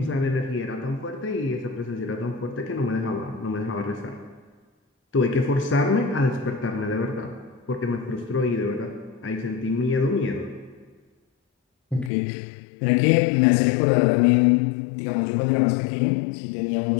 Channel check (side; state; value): right; drops out; at 12.1 s